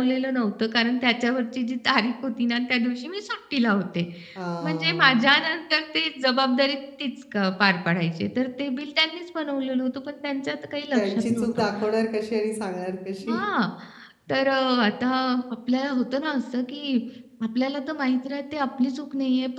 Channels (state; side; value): identical; both; correlation 1.00